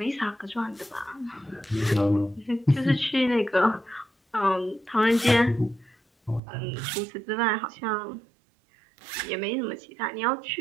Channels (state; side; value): drops out; left; at 6.4 s